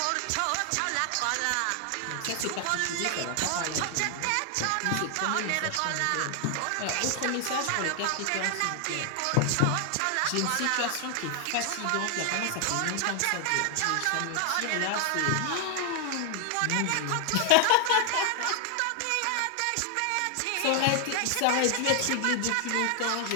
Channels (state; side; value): different; both; correlation 0.00